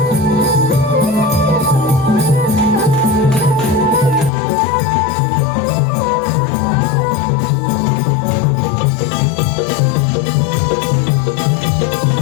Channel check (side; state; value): right; drops out; at 4.3 s